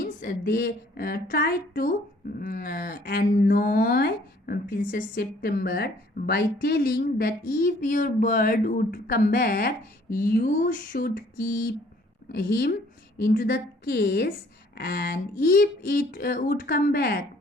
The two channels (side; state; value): both; normal; correlation 0.59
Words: they tried to annoy Princess September by telling that if your bird would come back, you should keep him into the case, and if it would come back,